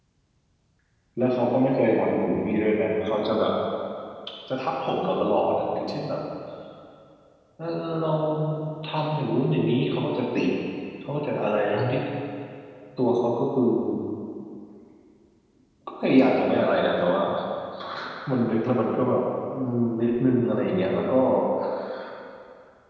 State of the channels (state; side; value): identical; both; correlation 1.00